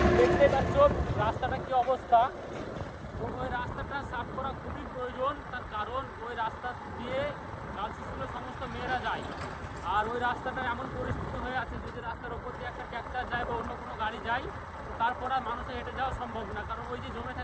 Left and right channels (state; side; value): identical; both; correlation 1.00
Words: দেখতে পাচ্ছ রাস্তাটা কি অবস্থা। ওই রাস্তাটা সাফ করা খুবই প্রয়োজন, তার কারণ ওই রাস্তা দিয়ে গার্লস স্কুলের সমস্ত মেয়েরা যায়। আর ওই রাস্তাটা এমন পরিস্থিতি হয়ে আছে, যদি রাস্তার ওপর দিয়ে একটা ট্র্যাক্টর যায় বা অন্য কোনো গাড়ি যায়, তারপর আর মানুষের হেঁটে যাওয়া সম্ভব না, কারণ ওই যে জমে